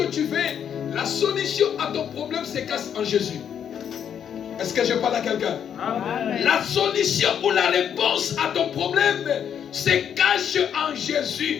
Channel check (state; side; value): quieter; right; 8.6 dB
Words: tu veux? La solution à ton problème se cache en Jésus. Est-ce que je parle à quelqu'un? Amen. La solution ou la réponse à ton problème se cache en